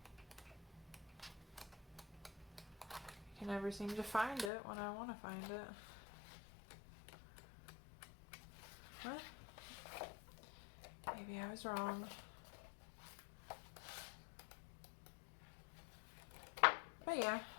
I can never seem to find it when I want to find it. What? Maybe I was wrong. But yeah,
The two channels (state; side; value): drops out; right; at 4.5 s